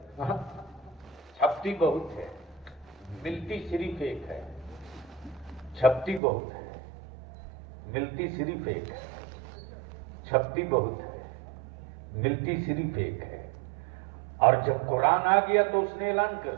چھپتی بہت ہے، ملتی صرف ایک ہے، چھپتی بہت ہے، ملتی صرف ایک ہے، چھپتی بہت ہے، ملتی صرف ایک ہے۔ اور جب قرآن آ گیا تو اس نے اعلان کر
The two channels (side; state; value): left; drops out; at 6.2 s